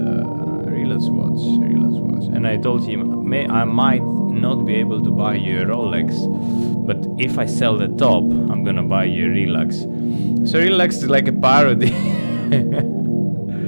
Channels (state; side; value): inverted; both; correlation -1.00